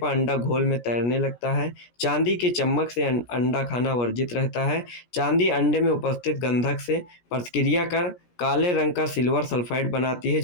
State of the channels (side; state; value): right; late; 17 ms